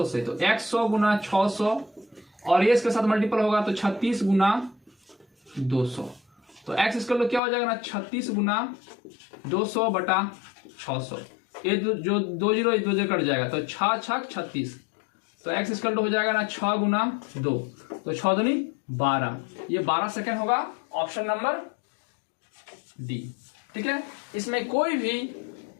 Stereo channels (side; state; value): right; drops out; at 7.4 s